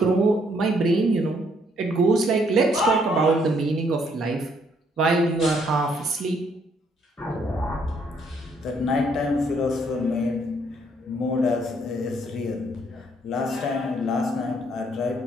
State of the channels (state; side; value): normal; both; correlation 0.68